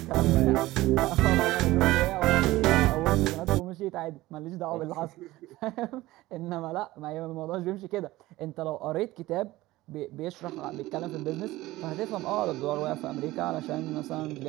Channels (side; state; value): left; quieter; 17.8 dB